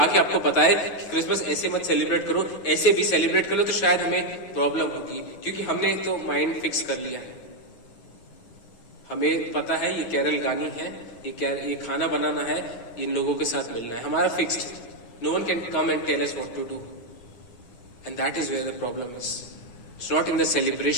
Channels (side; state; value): right; late; 9.3 ms